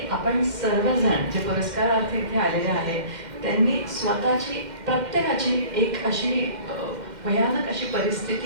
आपण सर्वजण जे पुरस्कारार्थी इथे आलेले आहेत त्यांनी स्वतःची प्रत्येकाची एक अशी भयानक अशी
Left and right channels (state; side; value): late; left; 2.1 ms